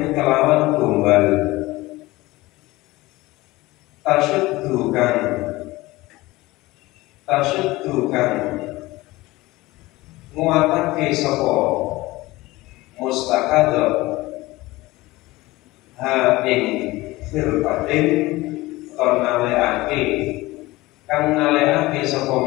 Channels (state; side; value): quieter; right; 19.7 dB